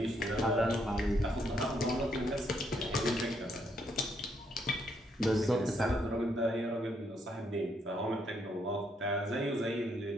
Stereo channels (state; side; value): normal; both; correlation 0.74